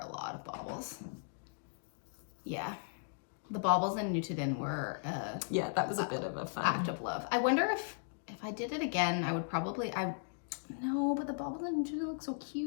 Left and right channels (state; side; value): silent; right; digital silence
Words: lot of baubles. Yeah, the baubles in Nutiden were Yeah, that was a bit of a fun act of love. I wonder if I did it again, I would probably no, but the baubles in Nutiden look so